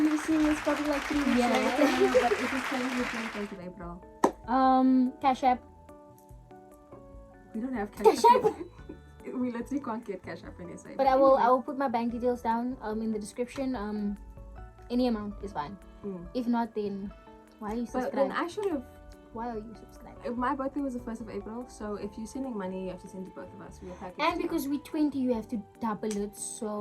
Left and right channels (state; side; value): identical; both; correlation 1.00